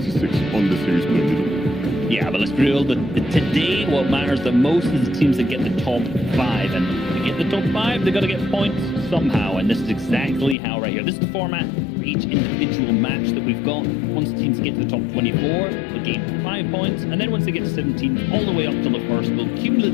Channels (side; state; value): right; drops out; at 10.6 s